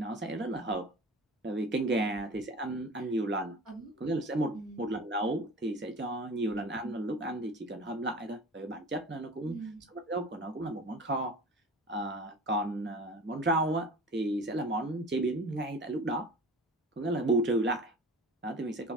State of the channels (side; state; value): both; normal; correlation 0.38